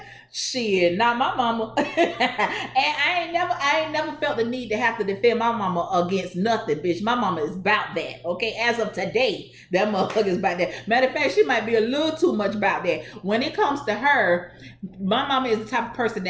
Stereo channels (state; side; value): identical; both; correlation 1.00